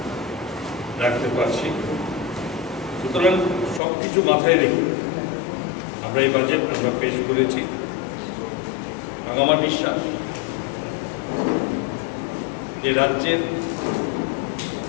রাখতে পারছি। সুতরাং সব কিছু মাথায় রেখে আমরা এই বাজেট আমরা পেশ করেছি এবং আমার বিশ্বাস যে রাজ্যের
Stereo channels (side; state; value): right; drops out; at 3.8 s